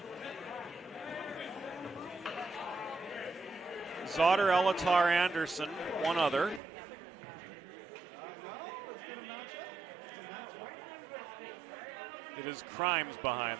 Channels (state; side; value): drops out; left; at 6.6 s